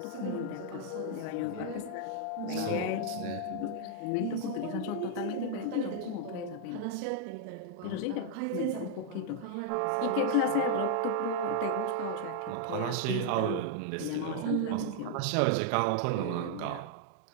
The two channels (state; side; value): different; both; correlation 0.00